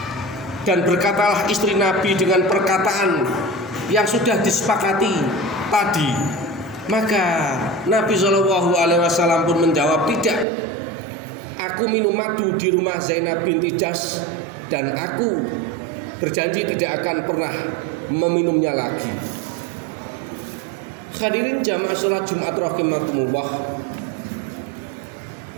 dan berkatalah istri Nabi dengan perkataan yang sudah disepakati tadi. Maka Nabi Shallallahu Alaihi Wasallam pun menjawab, tidak. Aku minum madu di rumah Zainab binti Jahsy dan aku berjanji tidak akan pernah meminumnya lagi. Hadirin jamaah sholat Jumat rahimakumullah.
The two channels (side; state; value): left; drops out; at 10.5 s